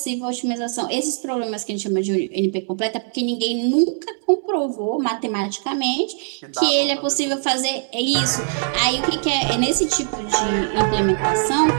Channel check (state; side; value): silent; left; 63 dB below the other